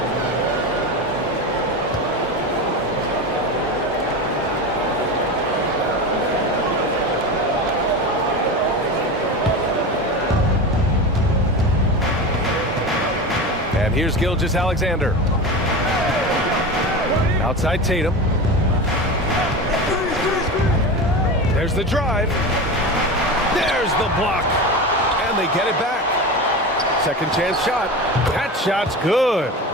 And here's Gilgeous-Alexander. Outside Tatum. There's the drive. There's the block. And they get it back. Second chance shot. That shot's good.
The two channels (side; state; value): both; normal; correlation 0.26